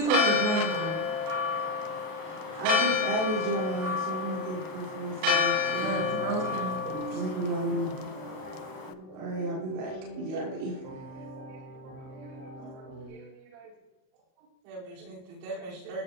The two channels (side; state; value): left; late; 38 ms